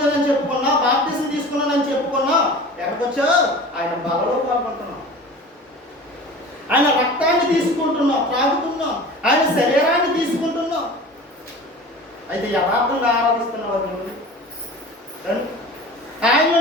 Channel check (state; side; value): normal; both; correlation 0.38